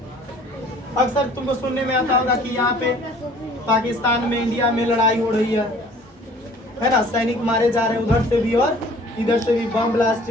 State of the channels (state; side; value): normal; both; correlation 0.52